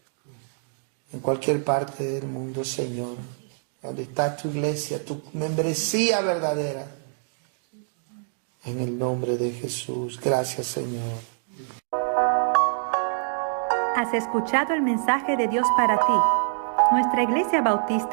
en cualquier parte del mundo, Señor, donde está tu iglesia, tu membresía verdadera. En el nombre de Jesús. Gracias, Señor. Has escuchado el mensaje de Dios para ti. Nuestra Iglesia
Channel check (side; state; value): left; silent; digital silence